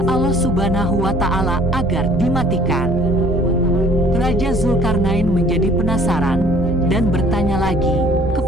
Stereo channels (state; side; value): normal; both; correlation 0.54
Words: Allah Subhanahu wa Ta'ala agar dimatikan." Raja Zulkarnain menjadi penasaran dan bertanya lagi